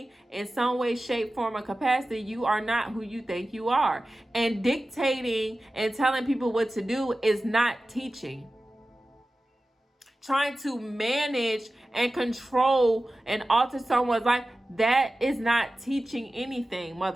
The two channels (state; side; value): normal; both; correlation 0.95